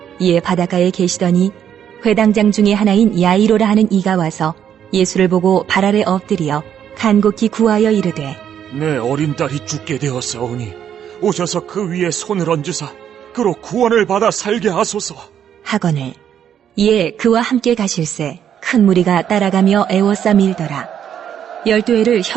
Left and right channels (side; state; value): left; quieter; 9.2 dB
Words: 이에 바닷가에 계시더니 회당장 중에 하나인 야이로라 하는 이가 와서 예수를 보고 발 아래 엎드려 간곡히 구하여 이르되 내 어린 딸이 죽게 되었사오니 오셔서 그 위에 손을 얹으사 그로 구원을 받아 살게 하소서 하거늘 이에 그와 함께 가실새 큰 무리가 따라가며 애워싸 밀더라. 12해를